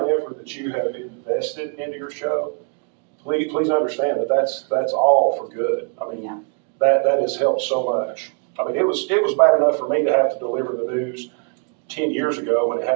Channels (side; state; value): left; quieter; 38.4 dB